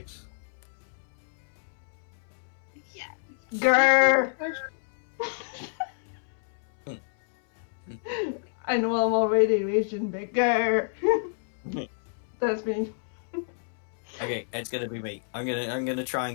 Yeah. Grr! I know I'm already raging, but grr! That's me. Okay, it's gonna be me. I'm gonna try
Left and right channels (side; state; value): right; silent; 59 dB below the other